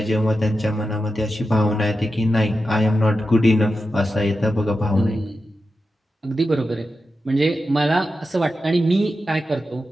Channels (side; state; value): both; normal; correlation 0.90